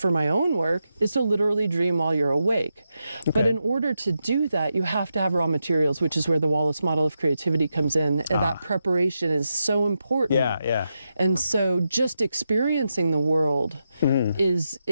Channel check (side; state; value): both; inverted; correlation -0.86